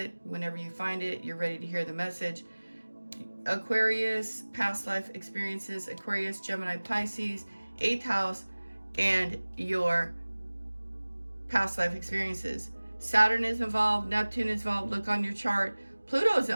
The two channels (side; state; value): both; inverted; correlation -1.00